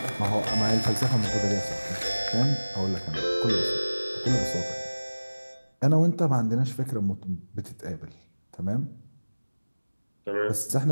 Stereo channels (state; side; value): inverted; both; correlation -1.00